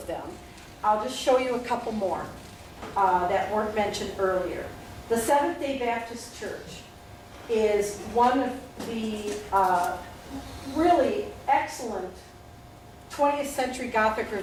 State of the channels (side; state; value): both; identical; correlation 1.00